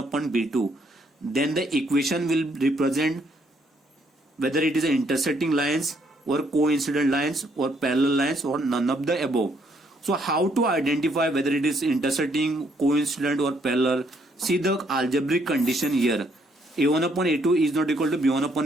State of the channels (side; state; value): both; normal; correlation 0.70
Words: b2, then the equation will represent whether it is intersecting lines or coincident lines or parallel lines or none of the above. So how to identify whether it is intersecting, coincident or parallel? See the algebraic condition here. a1 upon a2 is not equal to b1